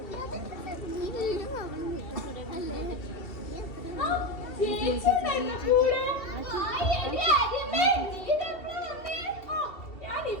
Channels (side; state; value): right; late; 2.7 ms